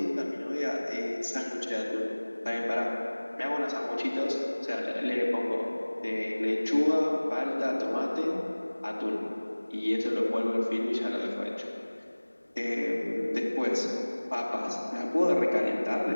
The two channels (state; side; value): inverted; both; correlation -1.00